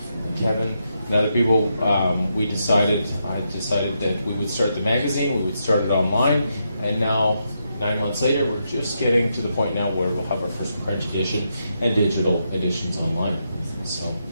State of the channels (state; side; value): inverted; both; correlation -0.82